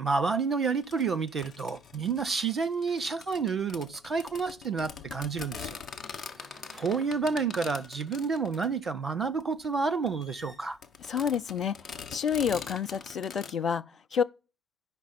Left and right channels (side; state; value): both; normal; correlation 0.57